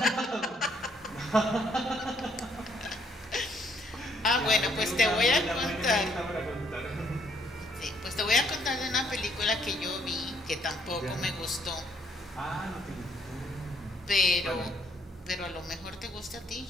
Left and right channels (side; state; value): both; normal; correlation 0.67